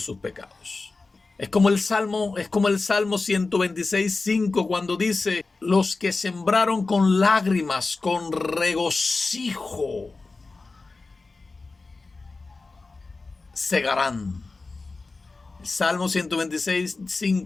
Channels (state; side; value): quieter; right; 3.7 dB